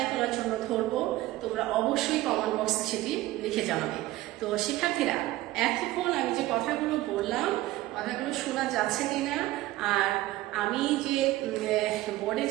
করার জন্য ধরবো। তোমরা অবশ্যই কমেন্ট বক্সে সেটি লিখে জানাবে। তো শিক্ষার্থীরা, এতক্ষণ আমি যে কথাগুলো বললাম, কথাগুলো শোনা যাচ্ছে কিনা, আর আমি যে বোর্ডে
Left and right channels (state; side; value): quieter; left; 16.9 dB